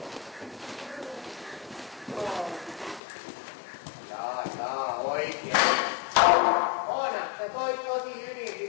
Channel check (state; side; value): drops out; right; at 3.0 s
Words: Jaa, oikein. Oona, sä toit tosi hyvin